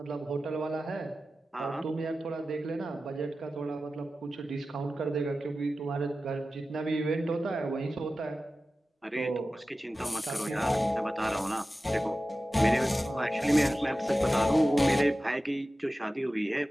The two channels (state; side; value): normal; both; correlation 0.94